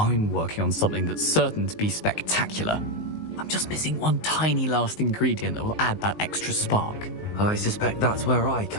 working on something that's certain to be spectacular. I'm just missing one tiny last ingredient that will add that extra spark. I suspect that's where I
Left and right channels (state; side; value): late; right; 19 ms